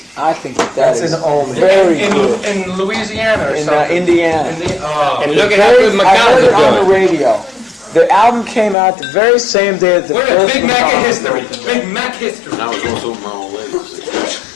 I think that is very good. In Louisiana or In something. Indiana. And look at how good I McDonald's heard it is on the doing. radio. The album came out the very same day that the We're in first Big Mac McDonald's history. opened up. Big Mac history. I was also my old lady.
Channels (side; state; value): right; drops out; at 8.8 s